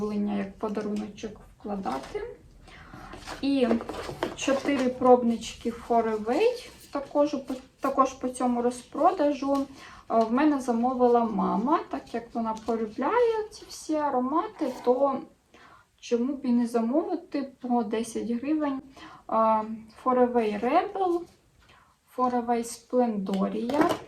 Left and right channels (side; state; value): both; identical; correlation 1.00